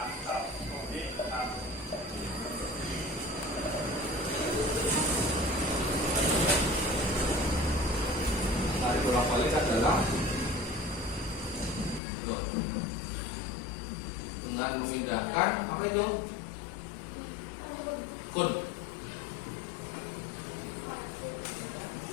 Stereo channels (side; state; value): right; drops out; at 12.0 s